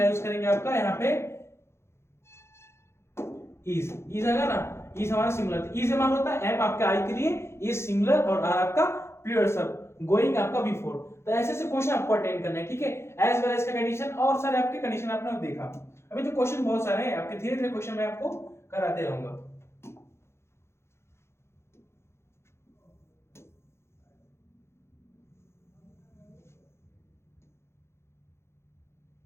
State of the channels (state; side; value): late; right; 0.13 ms